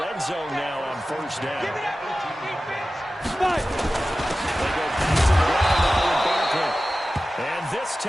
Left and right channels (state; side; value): normal; both; correlation 0.95